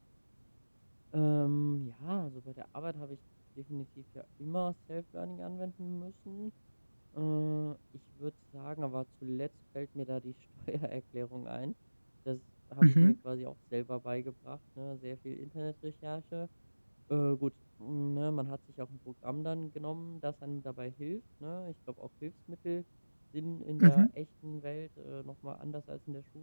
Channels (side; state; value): both; inverted; correlation -1.00